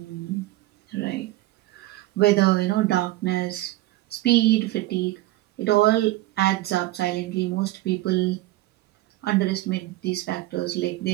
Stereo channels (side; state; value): left; quieter; 17.2 dB